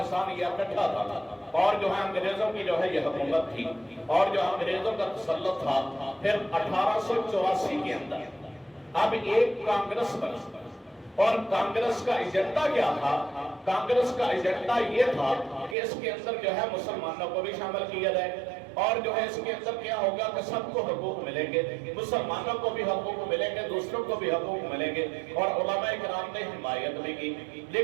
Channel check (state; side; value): drops out; left; at 15.8 s